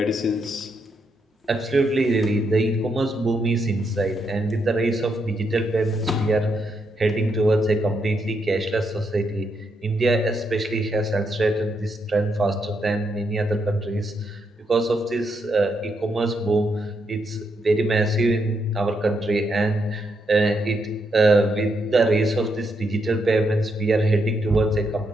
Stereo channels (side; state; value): both; normal; correlation 0.79